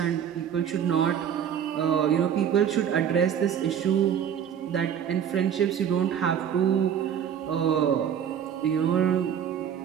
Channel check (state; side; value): quieter; left; 8.8 dB